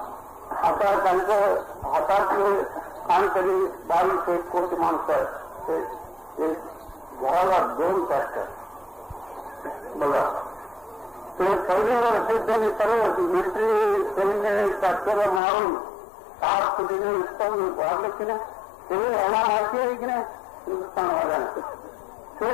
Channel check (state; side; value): drops out; right; at 15.4 s